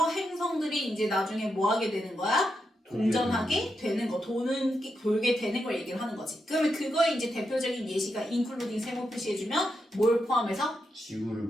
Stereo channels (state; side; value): normal; both; correlation 0.85